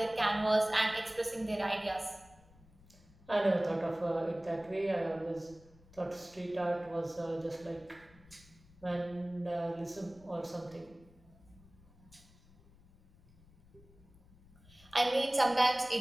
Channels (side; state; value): left; noise; rumble, 25 dB below the sound